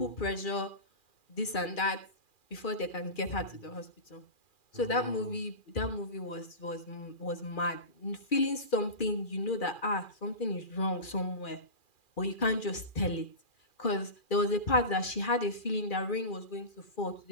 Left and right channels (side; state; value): right; late; 2.4 ms